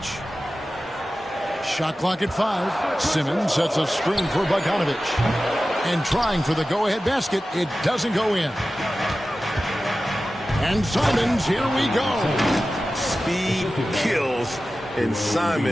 Shot clock at 5. Simmons sets a screen for Bogdanovic. And trying for the go-ahead basket, it doesn't go in. And Simons, here we go. Speed kills, and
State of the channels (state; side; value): normal; both; correlation 0.95